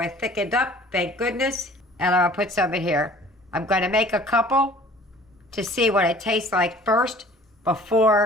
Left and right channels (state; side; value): normal; both; correlation 0.49